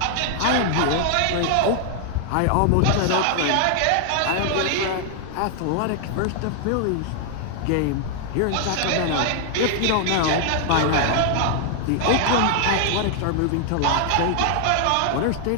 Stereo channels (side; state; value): both; different; correlation 0.00